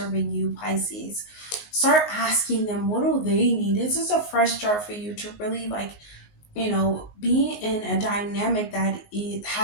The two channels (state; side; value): late; right; 19 ms